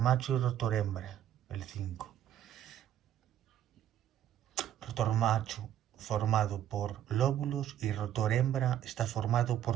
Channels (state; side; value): quieter; left; 11.0 dB